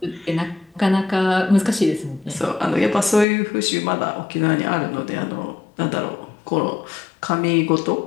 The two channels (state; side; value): drops out; right; at 3.2 s